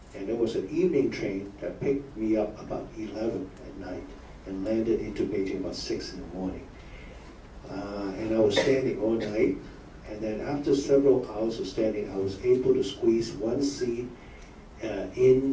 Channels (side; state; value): both; identical; correlation 1.00